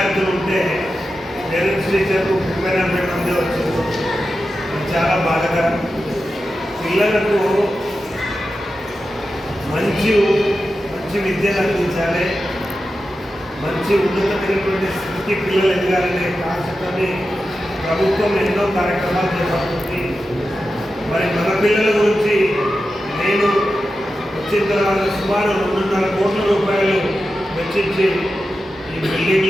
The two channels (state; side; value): normal; both; correlation 0.91